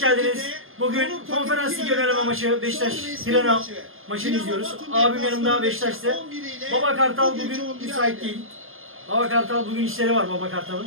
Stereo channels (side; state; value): left; late; 0.59 ms